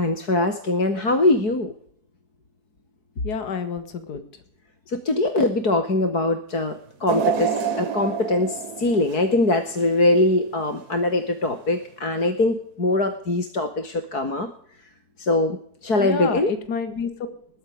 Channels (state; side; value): late; right; 4.7 ms